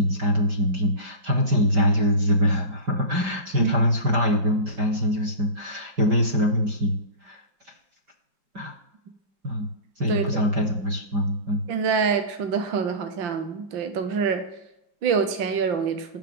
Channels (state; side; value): late; left; 5.0 ms